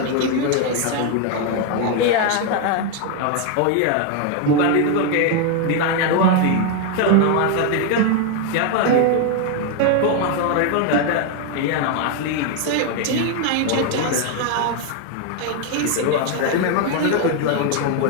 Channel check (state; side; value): different; both; correlation 0.01